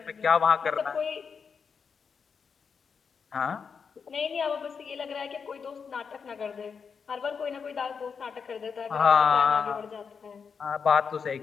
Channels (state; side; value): quieter; right; 6.0 dB